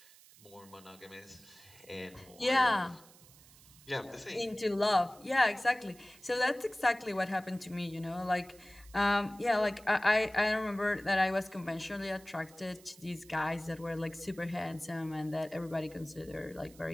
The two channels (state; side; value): noise; right; hiss, 23 dB below the sound